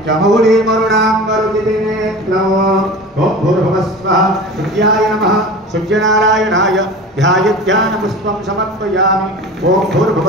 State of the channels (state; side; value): normal; both; correlation 0.35